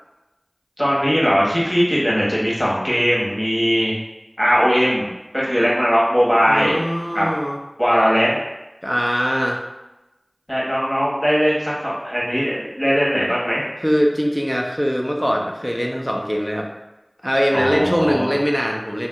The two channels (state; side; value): identical; both; correlation 1.00